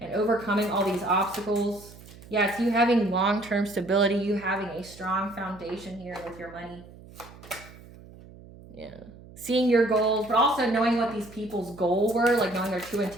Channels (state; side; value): noise; right; hum, 20 dB below the sound